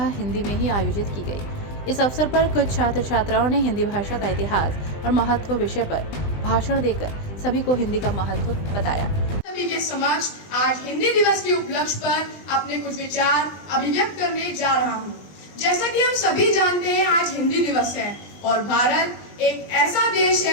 हिंदी में ही आयोजित की गई। इस अवसर पर कुछ छात्र छात्राओं ने हिंदी भाषा का इतिहास और महत्व विषय पर भाषण देकर सभी को हिंदी का महत्व बताया। सभी के समक्ष आज हिंदी दिवस के उपलक्ष्य पर अपने कुछ विचार अभिव्यक्त करने जा रहा हूँ। जैसा कि हम सभी जानते हैं, आज हिंदी दिवस है और भारत एक ऐसा देश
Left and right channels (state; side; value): late; right; 20 ms